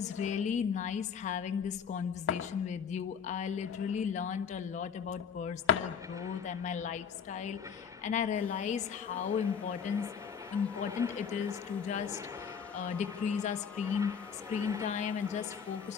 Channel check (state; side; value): quieter; right; 7.0 dB